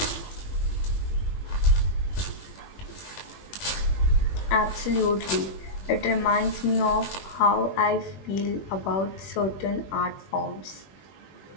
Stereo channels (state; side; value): late; right; 21 ms